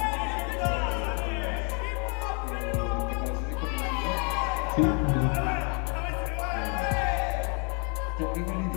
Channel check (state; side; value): quieter; right; 37.1 dB